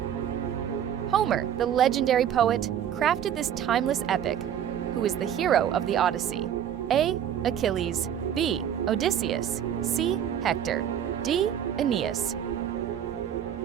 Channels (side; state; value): left; quieter; 9.6 dB